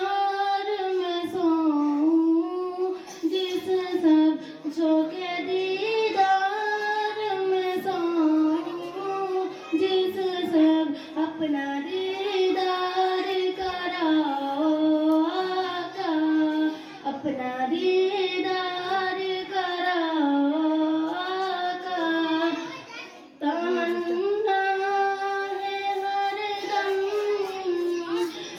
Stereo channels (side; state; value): both; identical; correlation 1.00